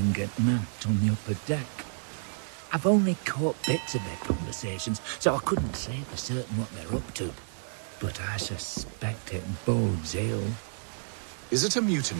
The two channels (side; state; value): left; silent; 56 dB below the other